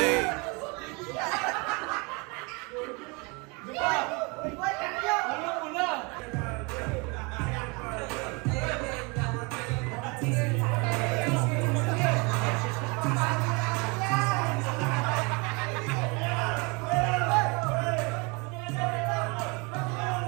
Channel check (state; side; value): quieter; left; 29.2 dB